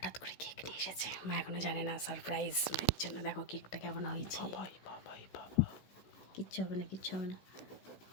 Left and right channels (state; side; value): late; right; 16 ms